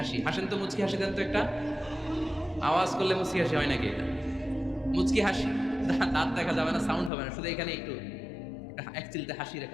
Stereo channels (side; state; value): right; drops out; at 7.1 s